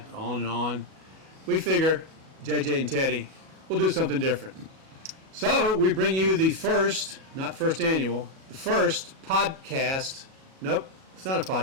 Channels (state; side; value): late; left; 37 ms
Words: on and on. We figure, JJ and Teddy, we'll do something different. So we bring you the first, not first annual, the first podcast. Nope, it's not a